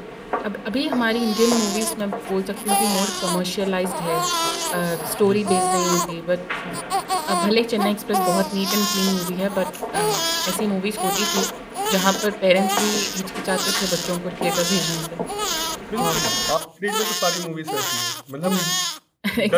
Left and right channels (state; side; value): identical; both; correlation 1.00